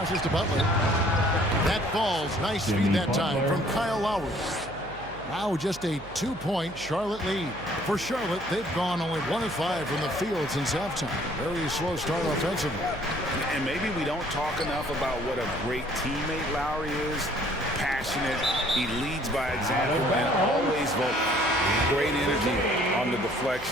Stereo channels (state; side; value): noise; right; hum, 18 dB below the sound